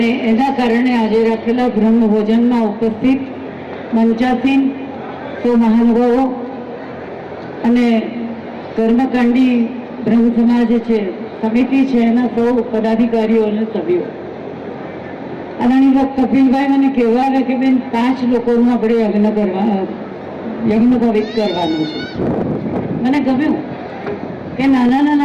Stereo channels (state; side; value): identical; both; correlation 1.00